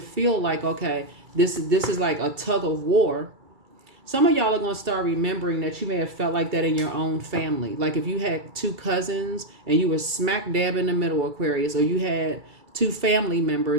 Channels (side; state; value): left; late; 2.3 ms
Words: like, okay, this is like a tug of war, some of y'all are going to start remembering that you may have felt like that in your own family. Like if you had two cousins and you were smack dab in the middle, Aquarius, or you had two family